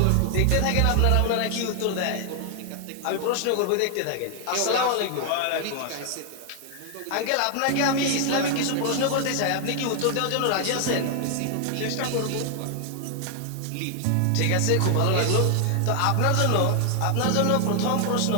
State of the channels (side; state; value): both; different; correlation 0.00